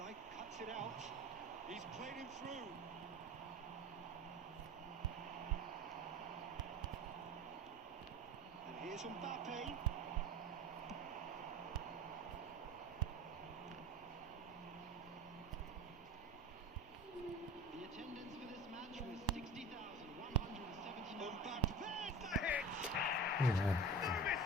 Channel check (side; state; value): both; normal; correlation 0.33